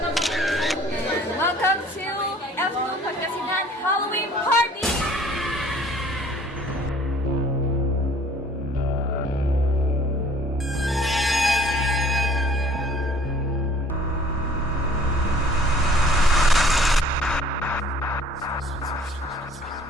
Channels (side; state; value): both; normal; correlation 0.53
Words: And welcome to F2 Pagkasinan Halloween Party!